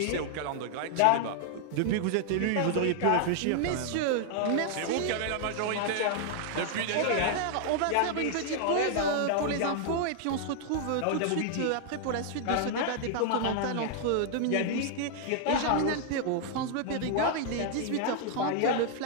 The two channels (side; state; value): both; different; correlation -0.01